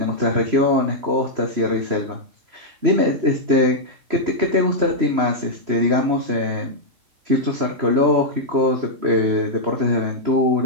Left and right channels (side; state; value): left; late; 3.0 ms